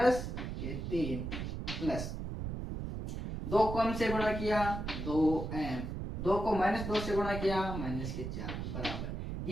के 3, प्लस 2 को m से गुणा किया 2m, 2 को माइनस 2 से गुणा किया माइनस के 4 बराबर,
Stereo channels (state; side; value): noise; right; rumble, 5 dB below the sound